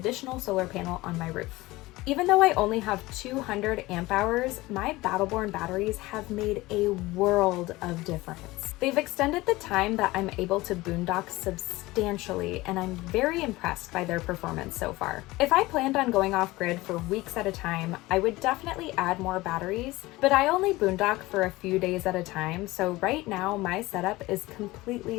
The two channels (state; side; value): quieter; right; 19.7 dB